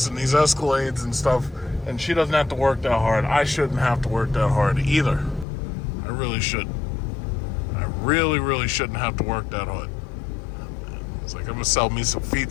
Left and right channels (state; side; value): drops out; right; at 5.5 s